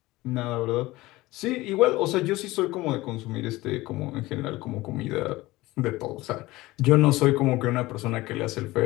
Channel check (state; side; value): quieter; right; 19.2 dB